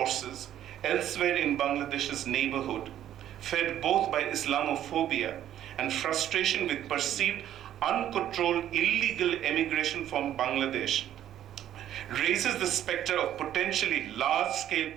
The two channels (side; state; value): left; quieter; 11.4 dB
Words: elsewhere in Bangladesh's neighborhood, fed both by Islamophobia and frustration with perceived uncontrolled illegal emigration from Bangladesh, raises the specter of potentially large-scale